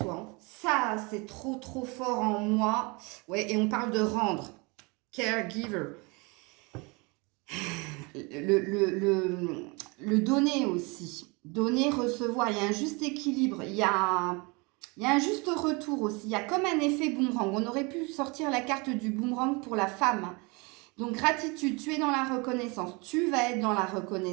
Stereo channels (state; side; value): quieter; left; 28.4 dB